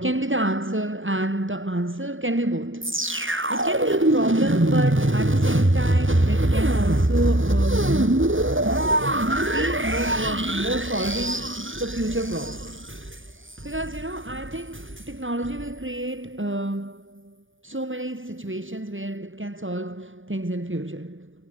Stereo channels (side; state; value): left; late; 0.57 ms